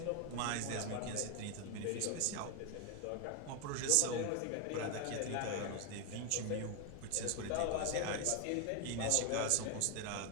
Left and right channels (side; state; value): both; different; correlation 0.01